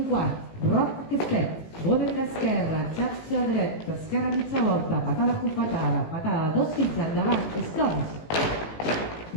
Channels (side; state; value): right; late; 18 ms